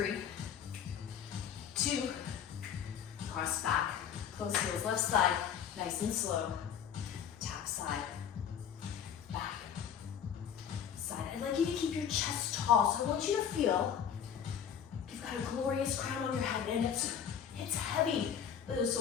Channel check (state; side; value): quieter; right; 8.4 dB